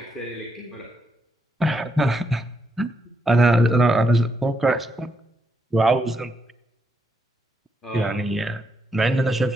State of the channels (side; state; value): both; normal; correlation 0.80